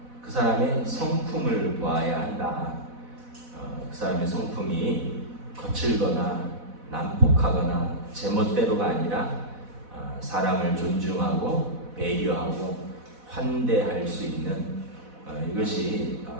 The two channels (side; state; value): left; late; 4.1 ms